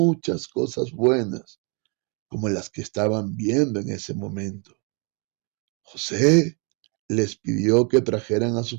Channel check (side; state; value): left; quieter; 35.0 dB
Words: cosas buenas, como las que estaban viendo en ese momento. José les pidió que trajeran a